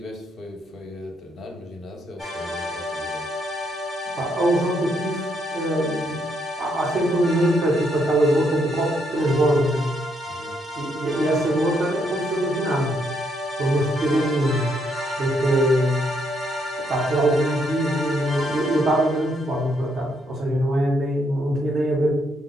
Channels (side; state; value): both; normal; correlation 0.75